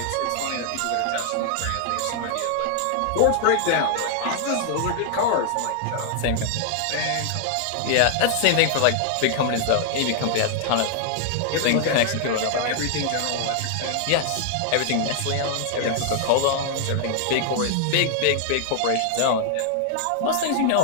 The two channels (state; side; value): different; both; correlation 0.00